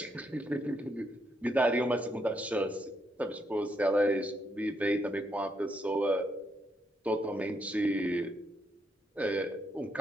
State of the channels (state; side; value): normal; both; correlation 0.77